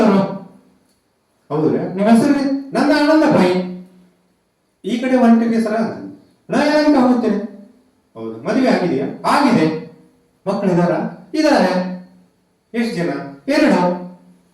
ಹೌದ್ರಿ, ನಿಮ್ಮ ಹೆಸರು? ನನ್ನ ಆನಂದ ಭಾಯಿ. ಈ ಕಡೆ ಹೊಂಟಿರಿ ಸರ ಅಂತ. ನಾ ಯಲಹಂಕ ಹೋಗ್ತೇನೆ. ಹೌದು, ಮದುವೆ ಆಗಿದೆಯಾ? ಆಗಿದೆ. ಮಕ್ಕಳಿದಾರ? ಇದಾರೆ. ಎಷ್ಟು ಜನ? 2.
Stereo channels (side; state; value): both; identical; correlation 1.00